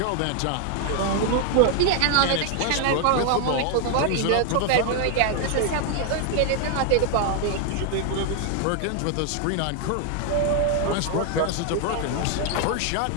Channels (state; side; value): different; both; correlation 0.00